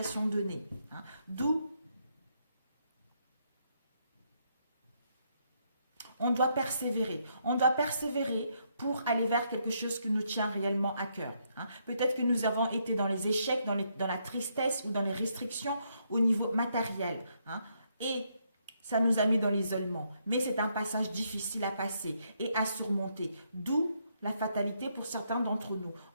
donnée. D'où on doit persévérer. On doit persévérer pour aller vers quelque chose qui nous tient réellement à cœur. Peut-être que nous avons été dans les échecs, dans la tristesse ou dans les restrictions au niveau matériel. Et ça nous a mis dans l'isolement. Mais c'est un passage difficile à passer et à surmonter. D'où la fatalité pour certains d'entre nous.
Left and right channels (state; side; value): inverted; both; correlation -0.75